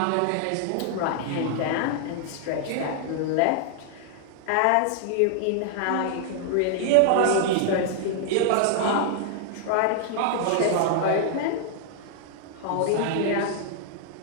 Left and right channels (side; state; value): both; different; correlation -0.01